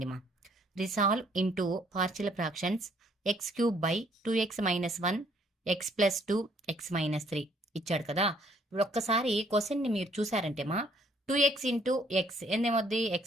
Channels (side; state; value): both; normal; correlation 0.64